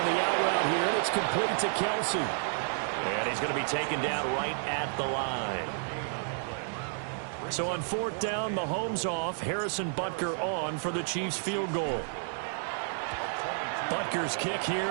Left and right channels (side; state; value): left; silent; digital silence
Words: the out route here, and it's complete to Kelsey. And he's going to be taken down right at the line. So on 4th down, Mahomes off, Harrison Butker on for the Chiefs field goal. Butker's kick